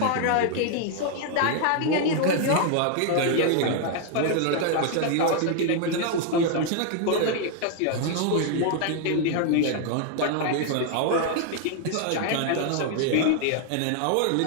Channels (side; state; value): both; different; correlation 0.00